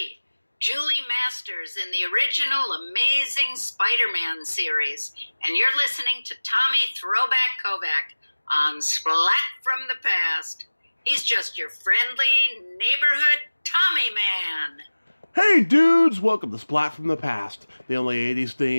Julie Masters in the original Amazing Spider-Man series, and you're listening to Tommy Throwback Kovac on Splat from the Past. He's just your friendly neighborhood Tommy man. Hey dudes, welcome to Splat from the Past, the only 80s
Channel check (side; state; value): both; inverted; correlation -1.00